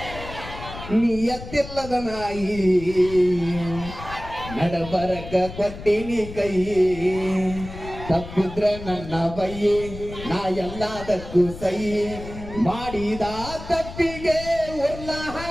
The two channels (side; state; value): left; noise; rumble, 12 dB below the sound